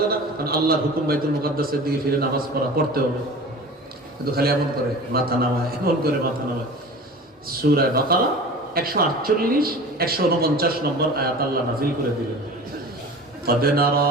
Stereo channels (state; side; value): normal; both; correlation 0.38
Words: না? কারণ আল্লাহর হুকুম বাইতুল মুকাদ্দাসের দিকে ফিরে নামাজ পড়তে হবে। কিন্তু খালি এমন করে মাথা নামায়, এমন করে মাথা নামায়। সূরা বাকারা 148-149 নম্বর আয়াত আল্লাহ নাযিল করে দিলেন, قد